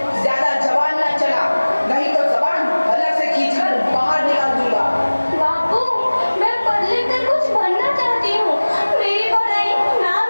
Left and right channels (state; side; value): inverted; both; correlation -1.00